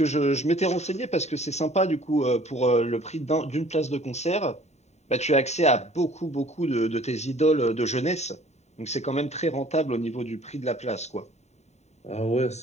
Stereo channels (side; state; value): right; late; 0.32 ms